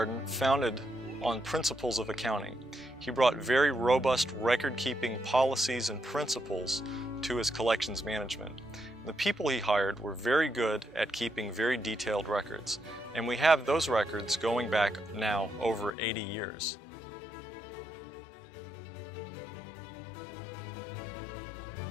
founded on principles of accounting. He brought very robust record-keeping policies and principles to his collections management. The people he hired were very good at keeping very detailed records, and we have those records going back now over 80 years.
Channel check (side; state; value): right; drops out; at 16.0 s